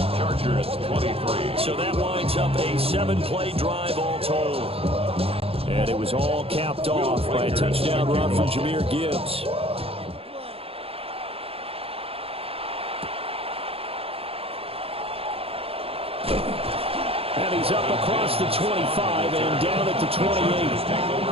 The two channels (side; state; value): left; late; 0.28 ms